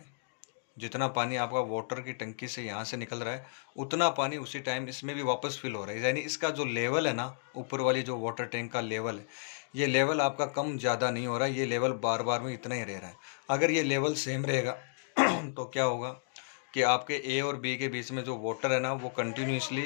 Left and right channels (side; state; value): right; silent; digital silence